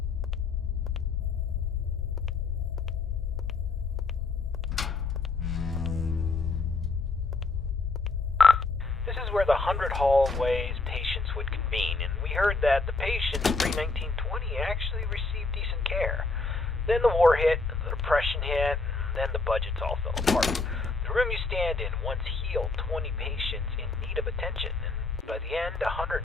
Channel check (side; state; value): right; quieter; 3.7 dB